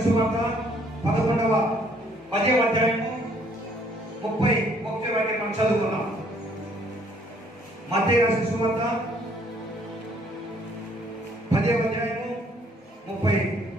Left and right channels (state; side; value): normal; both; correlation 0.63